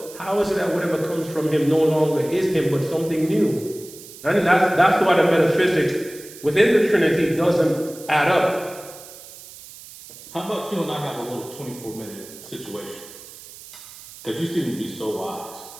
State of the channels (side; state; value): right; noise; hiss, 17 dB below the sound